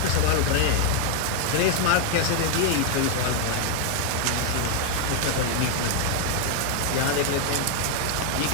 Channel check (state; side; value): different; both; correlation 0.00